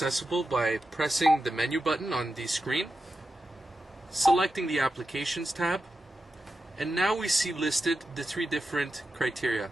by pressing the menu button on the screen, selecting the Applications tab, and now we see listed the 3 different criteria:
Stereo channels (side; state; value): both; normal; correlation 0.90